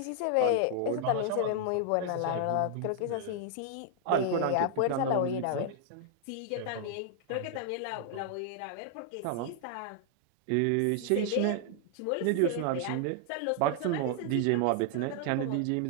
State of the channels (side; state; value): both; different; correlation 0.00